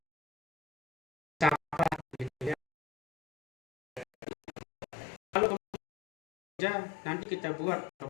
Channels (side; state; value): right; drops out; at 4.0 s